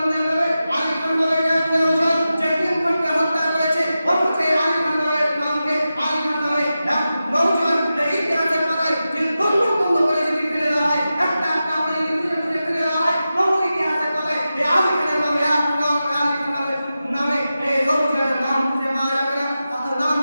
নামে আলী খান নামে একজন জেটিএম খানকে হত্যা করেছে, অথচ আলী খান নামের নামকে আলী খান নামে এক নওজোয়ান ইতিহাসের পাতায় যে বন্ধ করে যদি ফেলে দেওয়া হয়, একটা একটা করে যদি ফেলে দেওয়া হয়, তবু ইতিহাসের পাতায় এই আলী খানের নামে আলী খান নামে এই নওজোয়ানের নাম খুঁজে পাওয়া যাবে না, নাম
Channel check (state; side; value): inverted; both; correlation -0.92